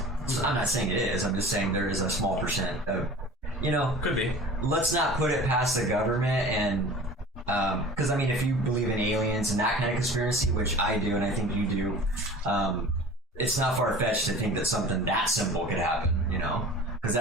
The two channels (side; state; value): both; normal; correlation 0.41